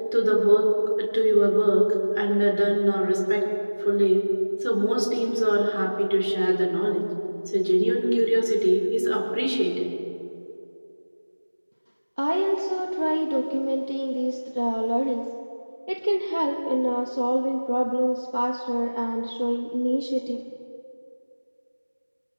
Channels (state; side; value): inverted; both; correlation -1.00